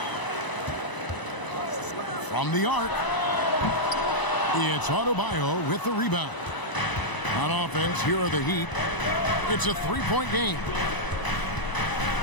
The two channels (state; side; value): late; right; 1.0 ms